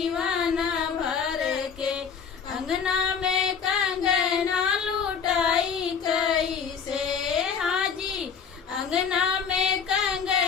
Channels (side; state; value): right; quieter; 6.6 dB